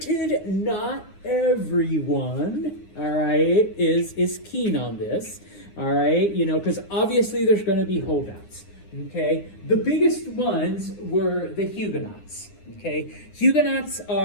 not everyone, all right, is keen on this, all right, you know, because obviously there's going to be holdouts. Okay, the biggest ones were the Huguenots. Okay, Huguenots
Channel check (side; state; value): right; late; 9.8 ms